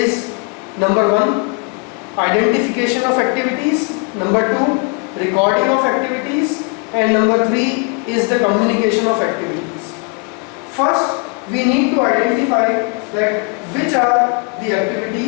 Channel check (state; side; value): quieter; right; 32.4 dB